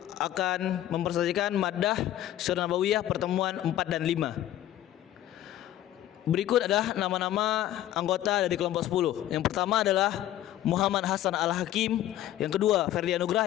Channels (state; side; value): quieter; right; 12.9 dB